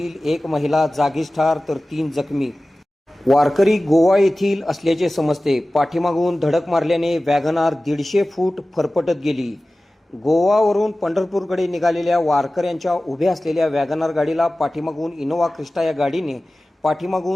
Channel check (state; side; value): normal; both; correlation 0.96